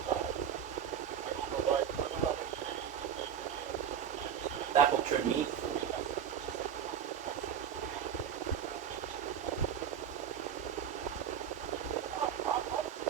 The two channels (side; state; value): left; quieter; 8.7 dB